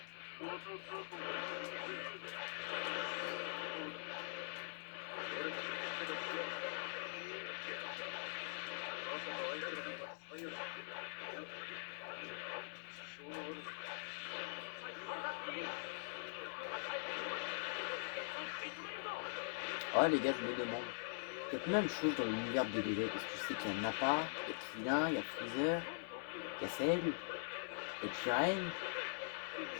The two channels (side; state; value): right; silent; digital silence